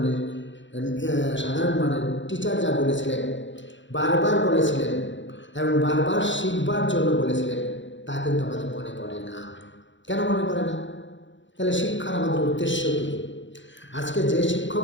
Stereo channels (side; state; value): right; late; 0.54 ms